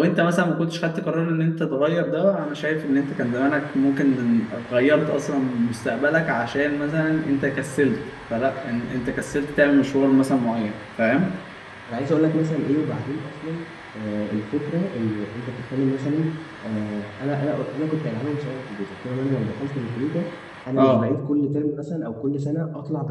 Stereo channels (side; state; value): both; identical; correlation 1.00